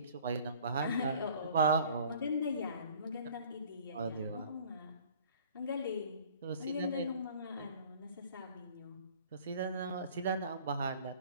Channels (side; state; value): both; inverted; correlation -0.50